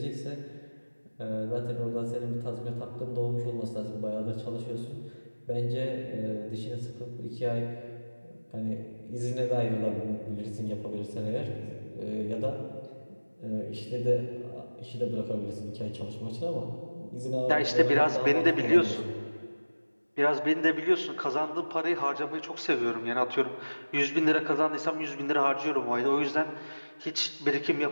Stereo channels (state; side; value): inverted; both; correlation -1.00